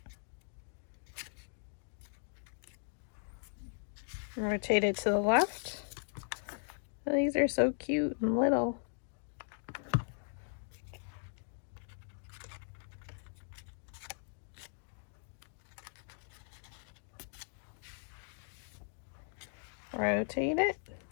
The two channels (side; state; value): right; silent; digital silence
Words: Rotate it to the left. Oh, these are so cute and little. Rotate it.